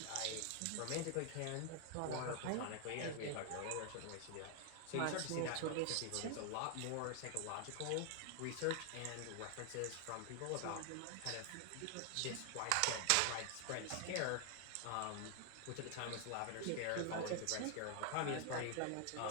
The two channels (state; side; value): different; both; correlation 0.00